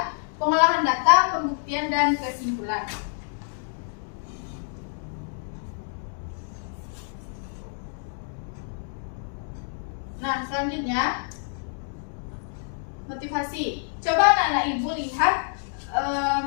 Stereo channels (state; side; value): silent; right; 60 dB below the other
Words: pengolahan data, pembuktian, dan kesimpulan. Nah, selanjutnya motivasi. Coba anak-anak Ibu lihat